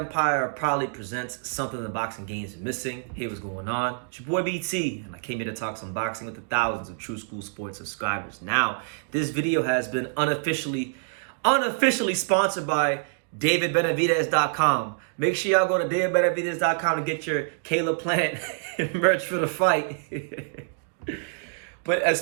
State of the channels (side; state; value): left; silent; digital silence